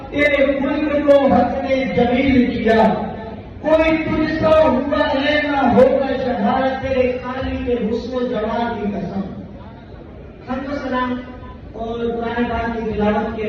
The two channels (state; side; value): identical; both; correlation 1.00